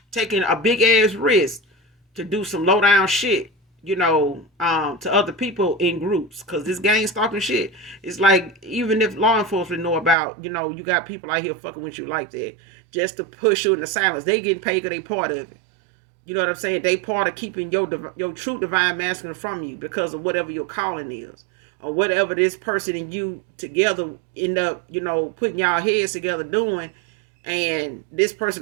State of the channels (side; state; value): left; drops out; at 10.2 s